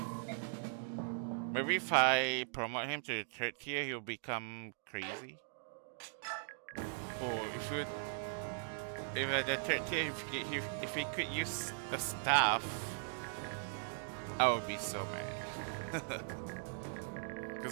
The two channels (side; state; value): left; silent; digital silence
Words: Maybe if I promote him to the 3rd tier, he'll become crazy. Or if at the 3rd tier, if he could use the staff, I would be so mad.